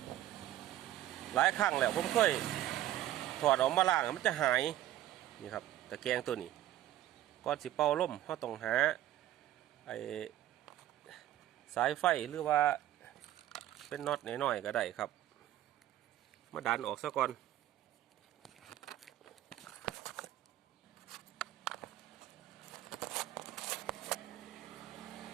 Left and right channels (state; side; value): quieter; left; 13.4 dB